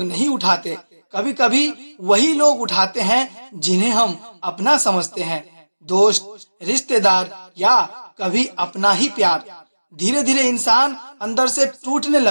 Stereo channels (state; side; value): inverted; both; correlation -1.00